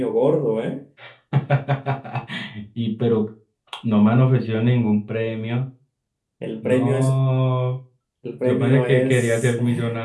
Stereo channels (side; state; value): both; identical; correlation 1.00